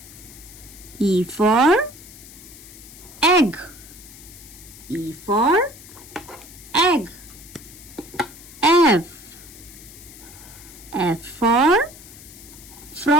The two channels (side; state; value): left; noise; hiss, 18 dB below the sound